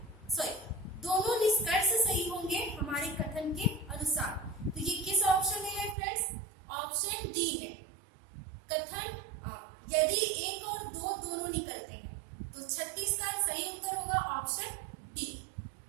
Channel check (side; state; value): left; drops out; at 6.0 s